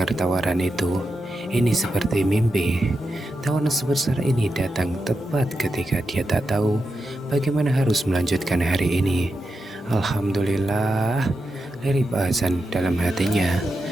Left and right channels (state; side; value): normal; both; correlation 0.88